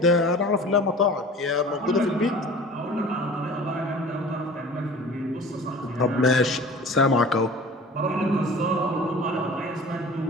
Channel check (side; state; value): both; normal; correlation 0.41